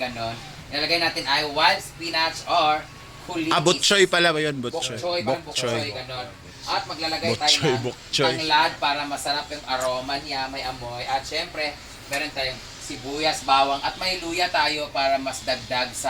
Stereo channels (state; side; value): identical; both; correlation 1.00